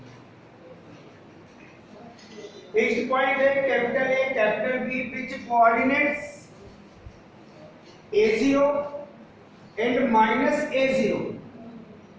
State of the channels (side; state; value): both; identical; correlation 1.00